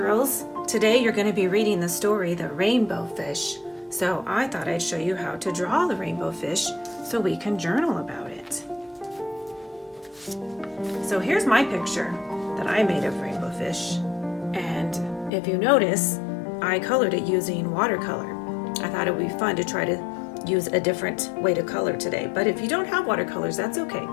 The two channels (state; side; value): drops out; right; at 15.3 s